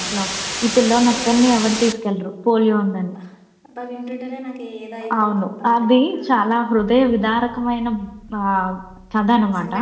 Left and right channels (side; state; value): both; identical; correlation 1.00